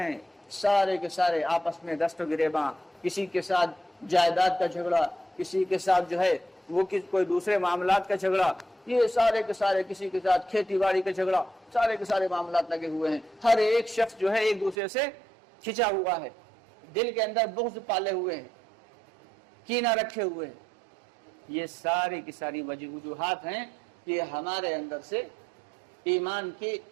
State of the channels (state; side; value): drops out; left; at 14.8 s